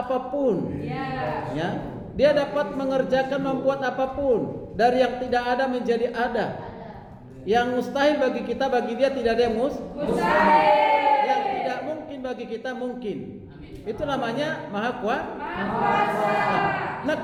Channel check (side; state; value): both; identical; correlation 1.00